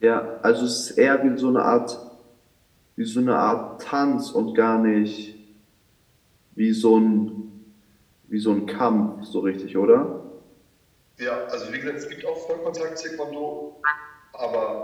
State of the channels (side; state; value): both; identical; correlation 1.00